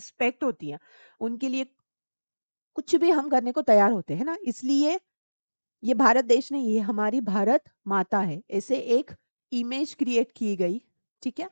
होती है, उनके लिए कुछ भी हम करने को तैयार होते हैं ना। इसलिए ये भारत देश नहीं, ये हमारी भारत माता है, ऐसे एक इमेज क्रिएट की गई। ठीक है।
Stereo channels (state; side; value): inverted; both; correlation -1.00